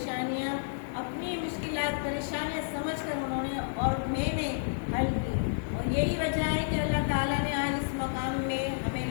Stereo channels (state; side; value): silent; right; 57 dB below the other